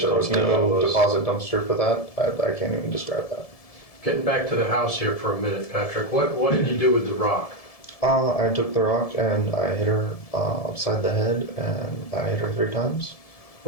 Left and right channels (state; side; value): late; right; 1.7 ms